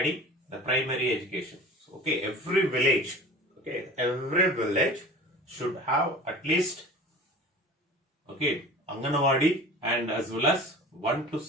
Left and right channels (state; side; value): normal; both; correlation 0.40